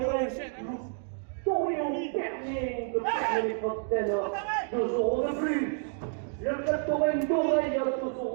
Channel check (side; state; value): left; silent; 56 dB below the other